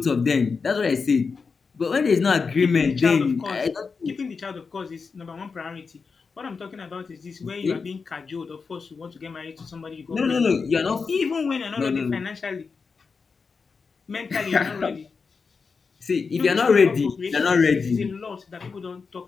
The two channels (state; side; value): quieter; right; 5.0 dB